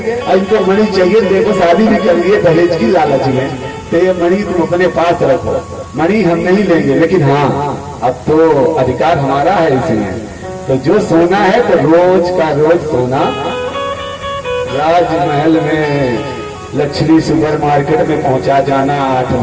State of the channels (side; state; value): both; identical; correlation 1.00